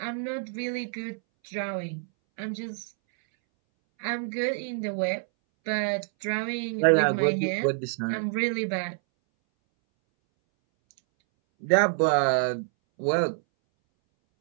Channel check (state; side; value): silent; left; 60 dB below the other